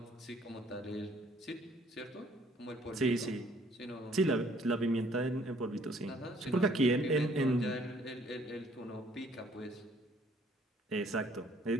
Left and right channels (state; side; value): normal; both; correlation 0.61